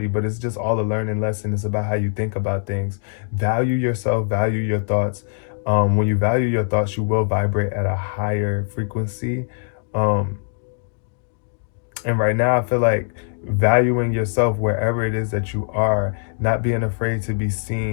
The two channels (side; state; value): right; silent; digital silence